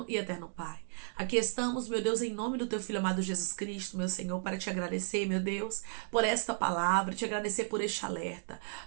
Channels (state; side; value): silent; left; 55 dB below the other